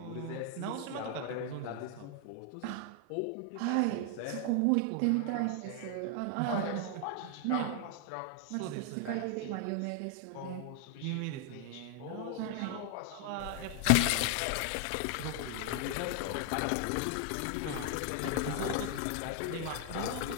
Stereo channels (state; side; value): different; both; correlation 0.00